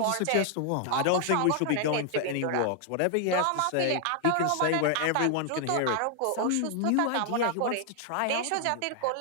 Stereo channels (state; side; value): different; both; correlation 0.00